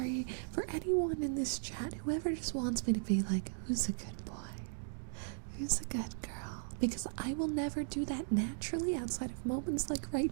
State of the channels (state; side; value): silent; left; digital silence